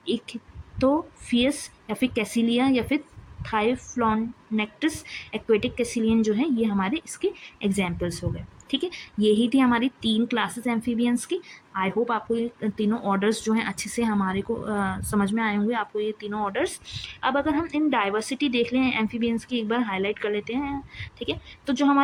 इक्थोफियस या फिर कैसिलिया या फिर थाइफ्लॉनेक्टिस एक्वेटिक कैसिलियन जो है, ये हमारे इसके एग्जाम्पल्स हो गए, ठीक है। यही थी हमारी 3 क्लासेस एम्फीबियंस की। आई होप आपको ये तीनों ऑर्डर्स जो हैं अच्छे से हमारे को समझ में आए होंगे, आपको ये तीनों ऑर्डर्स। अब अगर हम इन डाइवर्सिटी देख लें एम्फीबियंस की, एक बार हाईलाइट कर लेते हैं, ठीक है। तो जो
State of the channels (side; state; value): both; identical; correlation 1.00